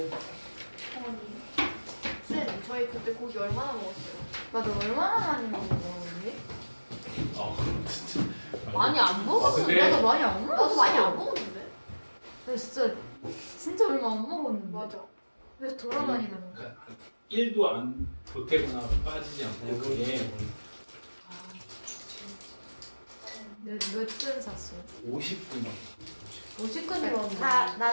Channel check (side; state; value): both; inverted; correlation -1.00